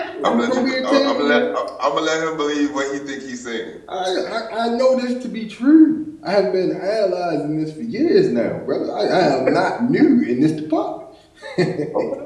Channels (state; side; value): identical; both; correlation 1.00